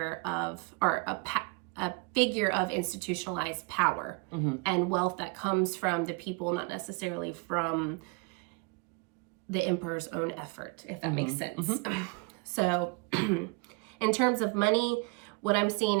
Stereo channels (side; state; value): left; quieter; 30.7 dB